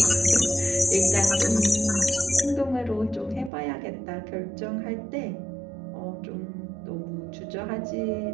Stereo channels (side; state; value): left; drops out; at 3.5 s